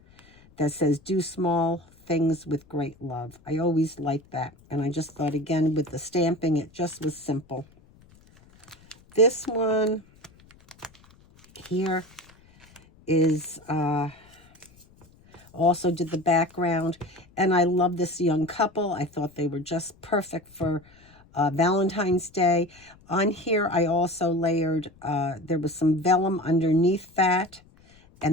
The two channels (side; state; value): left; noise; rumble, 28 dB below the sound